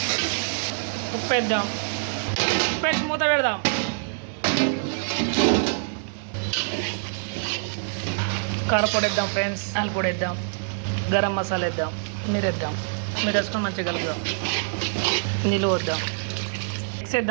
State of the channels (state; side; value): silent; left; 62 dB below the other